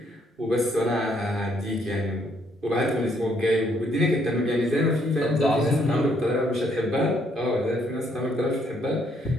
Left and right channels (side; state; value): both; normal; correlation 0.70